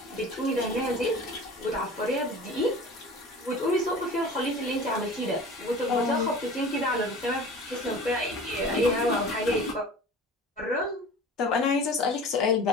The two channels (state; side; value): normal; both; correlation 0.40